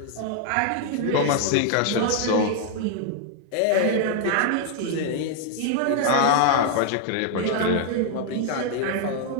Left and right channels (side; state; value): both; different; correlation 0.00